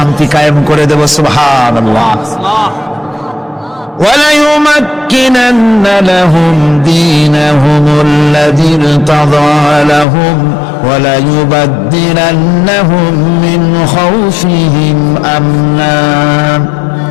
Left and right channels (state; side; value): drops out; right; at 10.1 s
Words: কায়েম করে দেব। সুবহানাল্লাহ। وَلَيُمَكِّنَنَّ لَهُمْ دِينَهُمُ الَّذِي ارْتَضَىٰ لَهُمْ وَلَيُبَدِّلَنَّهُم مِّنْ خَوْفِهِمْ أَمْنًا।